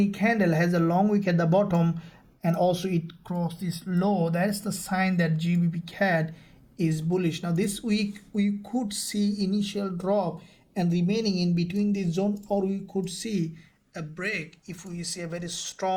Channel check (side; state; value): both; identical; correlation 1.00